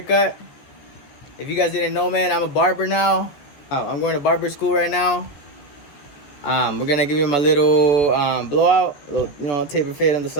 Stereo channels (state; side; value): late; right; 14 ms